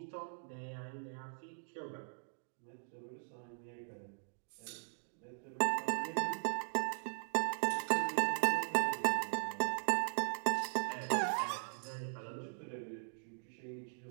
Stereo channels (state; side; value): silent; left; digital silence